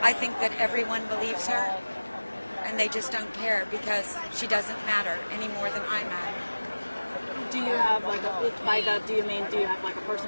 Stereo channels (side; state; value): both; inverted; correlation -1.00